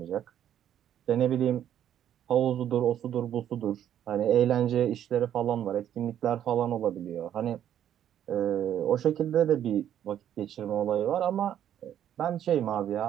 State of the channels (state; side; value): quieter; left; 10.4 dB